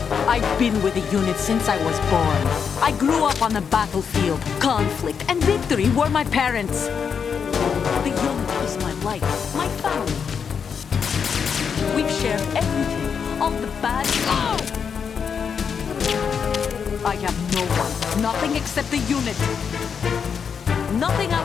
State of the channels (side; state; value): right; quieter; 6.7 dB